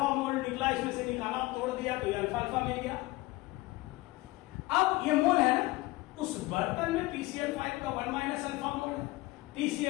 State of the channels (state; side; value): quieter; right; 20.3 dB